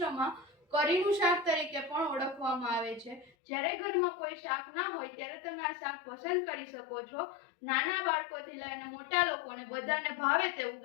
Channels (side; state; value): right; drops out; at 3.3 s